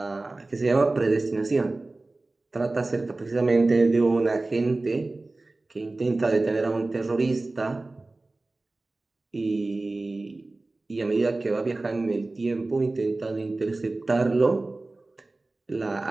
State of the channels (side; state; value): left; quieter; 3.1 dB